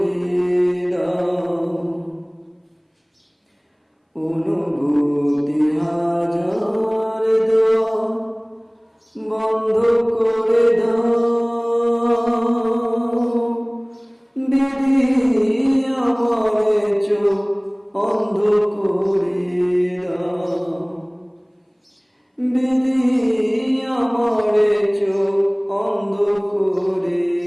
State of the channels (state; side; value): identical; both; correlation 1.00